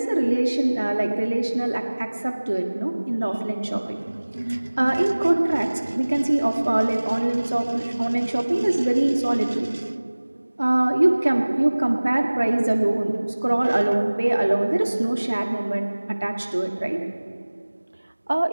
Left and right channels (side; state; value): both; inverted; correlation -1.00